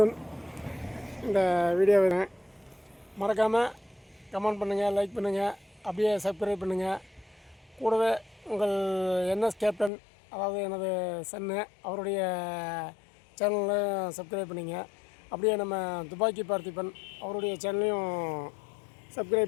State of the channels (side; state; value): right; drops out; at 9.9 s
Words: இந்த வீடியோவை மறக்காமல் கமெண்ட் பண்ணுங்கள், லைக் பண்ணுங்கள், அப்படியே சப்ஸ்கிரைப் பண்ணுங்கள். கூடவே உங்கள் என்எஸ் கேப்டன், அதாவது எனது சன்னு, அவருடைய சேனலில் சப்ஸ்கிரைப் பண்ணிங்க. அப்படியே நம்ம துப்பாக்கி பார்த்திபன் அவருடைய சேனலையும்